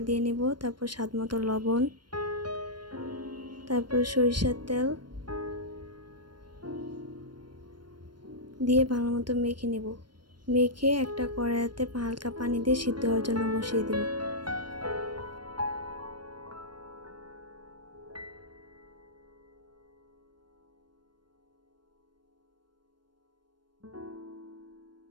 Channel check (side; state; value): left; late; 0.72 ms